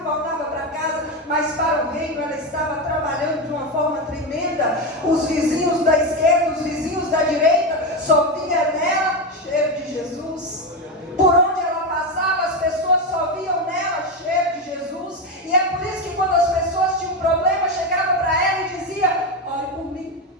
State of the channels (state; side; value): normal; both; correlation 0.13